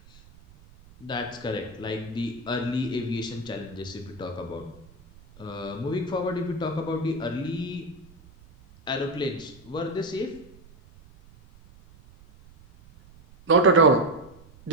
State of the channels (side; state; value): right; noise; rumble, 23 dB below the sound